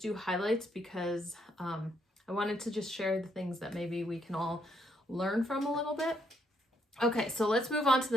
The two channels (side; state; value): both; normal; correlation 0.73